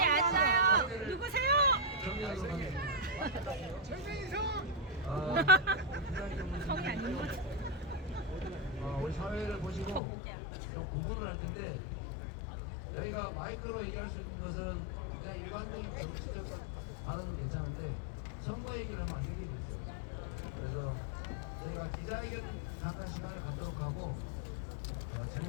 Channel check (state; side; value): drops out; right; at 10.0 s